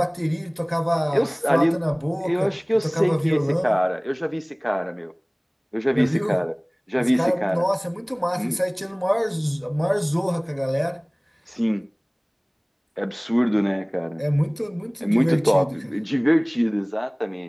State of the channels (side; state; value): both; identical; correlation 1.00